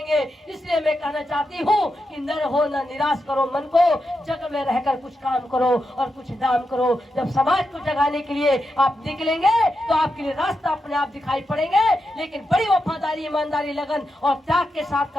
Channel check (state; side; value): normal; both; correlation 0.87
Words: इसलिए मैं कहना चाहती हूँ कि न रहो, न निराश करो मन को, जग में रहकर कुछ काम करो और कुछ नाम करो। जब समाज को जगाने के लिए आप निकलेंगे तो आपके लिए रास्ता अपने आप दिखाई पड़ेंगे, लेकिन बड़ी वफादारी, ईमानदारी, लगन और त्याग के साथ